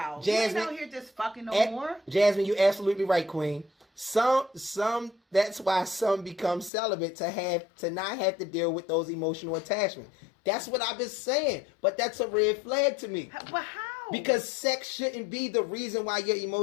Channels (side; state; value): right; drops out; at 6.7 s